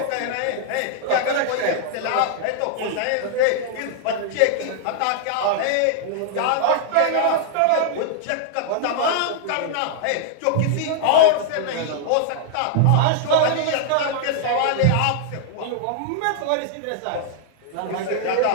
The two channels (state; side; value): different; both; correlation -0.01